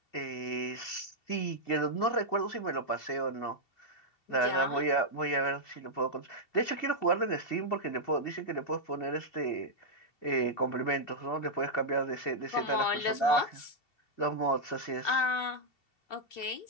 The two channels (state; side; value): late; right; 2.7 ms